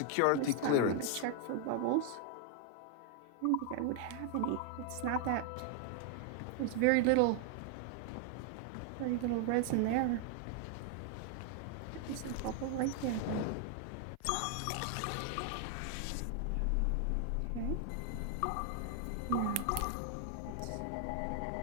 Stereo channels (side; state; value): both; different; correlation 0.00